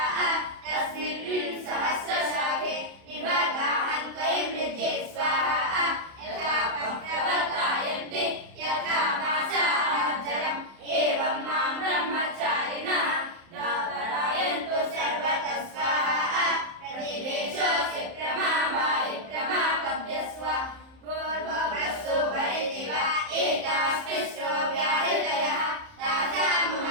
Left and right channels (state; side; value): late; left; 30 ms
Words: तस्मिन् सहस्रशाखे निभगाहं त्वयि मृजे स्वाहा यथा प्रवर्तायन्ते यथा मासाजरम् एवं मां ब्रह्मचारिणः दापरायन्तु सर्वतः स्वाहा प्रतिवेशोऽसि प्रमावायि प्रमापद्य स्वा पूर्ववस्तु वरिति वा एतास्तिस्रो व्याहृतयः